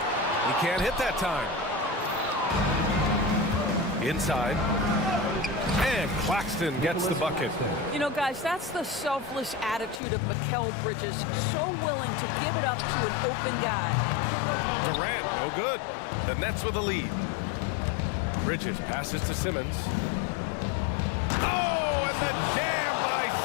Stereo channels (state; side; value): drops out; right; at 10.0 s